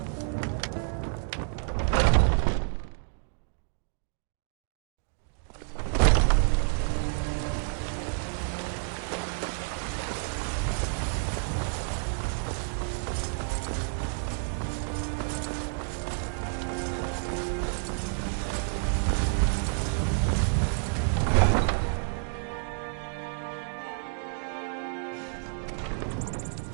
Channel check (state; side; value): silent; left; 58 dB below the other